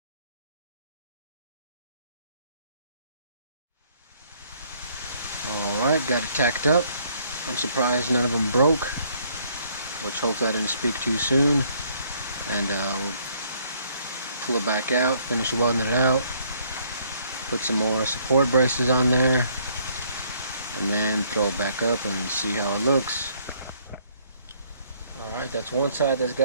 Alright, got it tacked up. I'm surprised none of them broke, which hopefully I didn't speak too soon. And we'll pull it back out, finish welding it out, put some more support braces on there, and then throw it back up and see how it looks. Alright, that's one side that's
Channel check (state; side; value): inverted; both; correlation -0.65